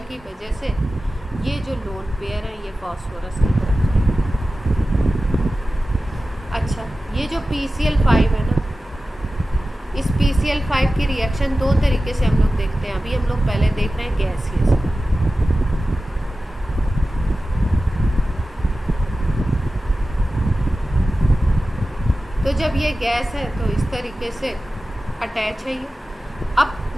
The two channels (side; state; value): both; normal; correlation 0.95